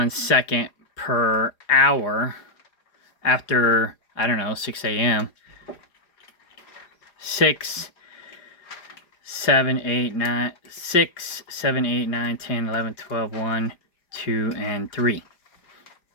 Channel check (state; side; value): late; right; 4.9 ms